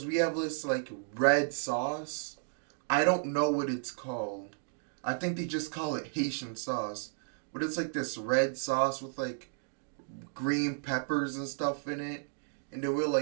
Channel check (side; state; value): left; silent; digital silence